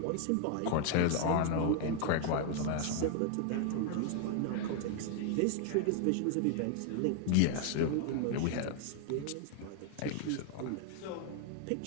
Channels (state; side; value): different; both; correlation 0.00